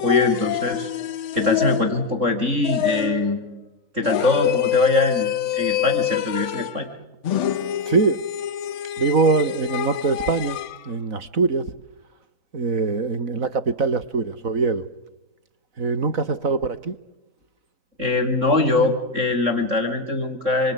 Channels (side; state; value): left; late; 3.7 ms